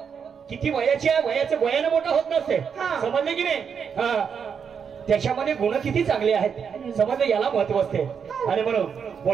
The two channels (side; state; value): left; quieter; 6.8 dB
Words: किती वयाची आहे वयाचं वयानं मोठा होत नसते. समजले की नाही. त्याच्यामध्ये गुण किती चांगले आहेत समजले याला महत्व असते. आणि म्हणून